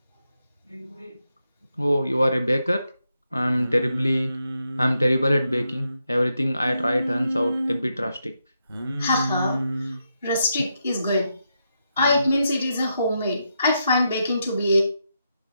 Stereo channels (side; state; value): both; inverted; correlation -0.84